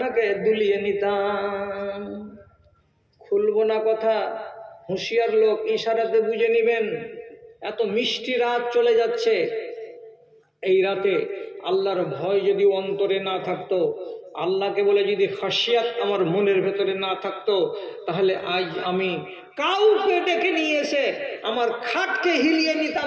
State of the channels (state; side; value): identical; both; correlation 1.00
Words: দুলিয়ে নিতাম। খুলবো না কথা, হুঁশিয়ার লোক ইশারাতে বুঝে নেবেন। এত মিষ্টি রাত চলে যাচ্ছে, এই রাতে আল্লাহর ভয় যদি অন্তরে না থাকতো, আল্লাহকে বলে যদি খাসিয়াত আমার মনের ভেতরে না থাকতো, তাহলে আজ আমি কাউকে ডেকে নিয়ে এসে আমার খাটকে হিলিয়ে